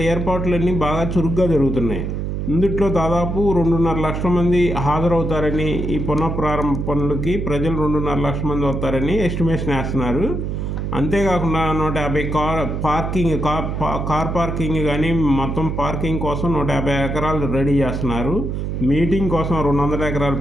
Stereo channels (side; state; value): right; noise; hum, 2 dB below the sound